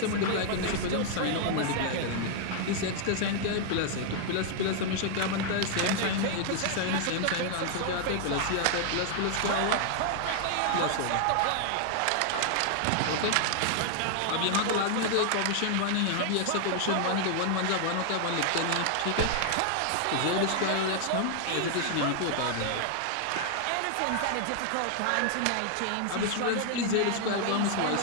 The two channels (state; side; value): different; both; correlation 0.00